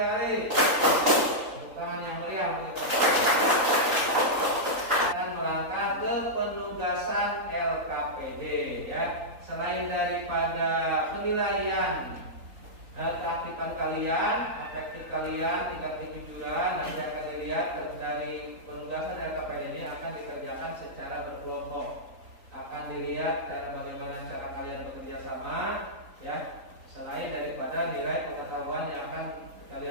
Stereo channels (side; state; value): left; late; 3.9 ms